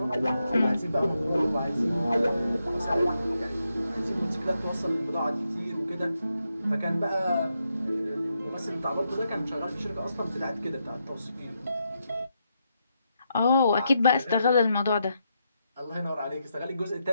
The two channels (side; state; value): both; inverted; correlation -0.82